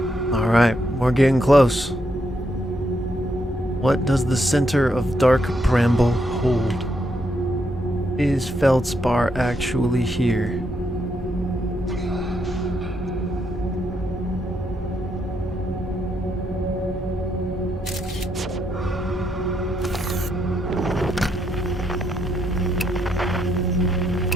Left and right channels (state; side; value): normal; both; correlation 0.78